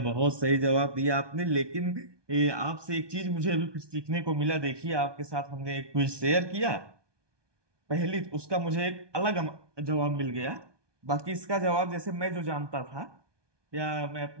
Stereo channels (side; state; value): left; late; 1.2 ms